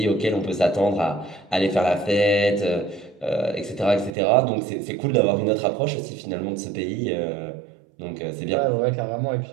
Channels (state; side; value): drops out; left; at 4.1 s